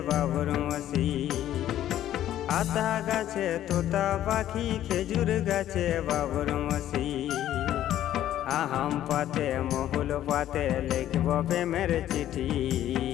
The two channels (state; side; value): quieter; right; 12.2 dB